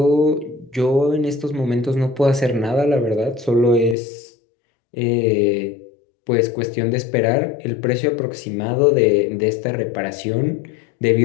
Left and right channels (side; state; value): right; drops out; at 4.0 s